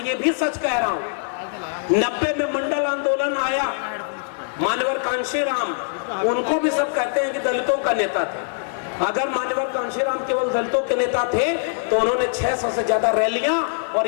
ये भी सच कह रहा हूं, 90 में मंडल आंदोलन आया, मान्यवर कांशीराम, उनको भी सब कहते हैं कि दलितों का नेता थे। अगर मान्यवर कांशीराम केवल दलितों के नेता थे तो उन्होंने 600 से ज्यादा रैलियां और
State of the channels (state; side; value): silent; right; digital silence